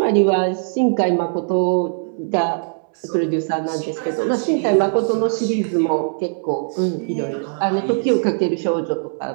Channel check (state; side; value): silent; left; 66 dB below the other